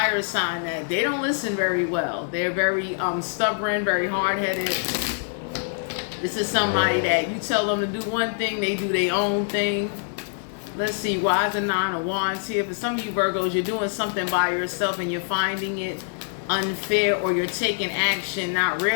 sign that they don't listen very well. They're very stubborn, very hard-headed. This is somebody that you tell them to do one thing, they do their own thing. Let's see, why is the Nine of Wands here? For some of you Virgos, you're doing something by yourself and you're finding it unfair, or you're taking action not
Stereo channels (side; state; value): right; silent; digital silence